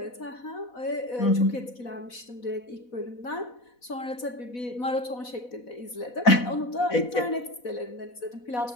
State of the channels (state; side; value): late; right; 4.1 ms